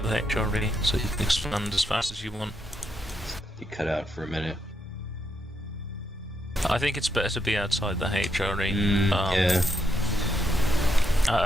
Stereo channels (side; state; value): both; normal; correlation 0.79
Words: the HRE, so you can expand as fast as you want. You cut out for a minute. I think it's better to be outside the HRE. Yeah.